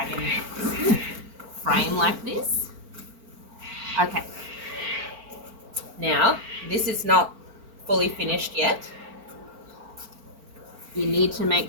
frame like this. Okay. Now, this is not fully finished yet. You need to make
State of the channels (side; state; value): left; late; 4.4 ms